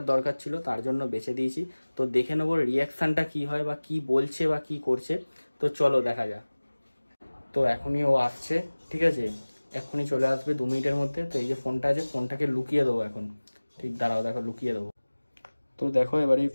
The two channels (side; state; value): both; inverted; correlation -1.00